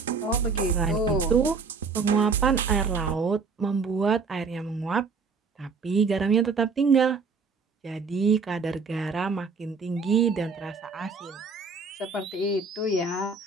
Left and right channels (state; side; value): quieter; left; 4.7 dB